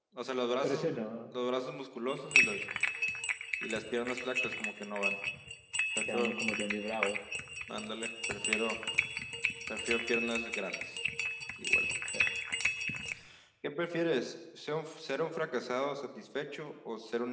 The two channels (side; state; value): both; identical; correlation 1.00